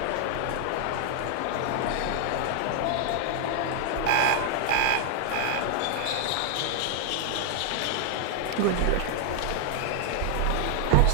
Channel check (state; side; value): different; both; correlation 0.00